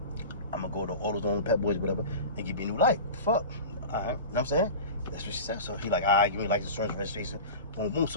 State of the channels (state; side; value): inverted; both; correlation -0.31